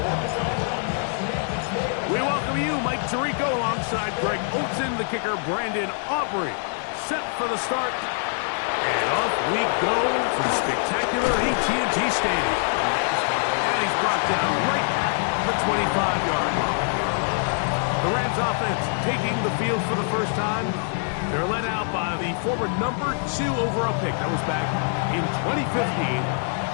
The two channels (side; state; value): right; silent; 60 dB below the other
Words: We welcome you, Mike Tirico, alongside Greg Olson, the kicker, Brandon Aubrey. Set for the start. And off we go from spectacular AT&T Stadium. And he's brought down right at the 25-yard line. The Rams offense taking the field for the first time. They're led out by the former number 2 overall pick. That was back in 2015,